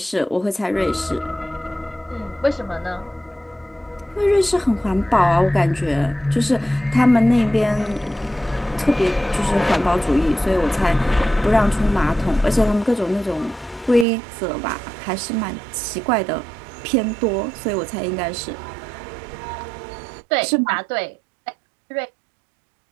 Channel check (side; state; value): left; drops out; at 14.1 s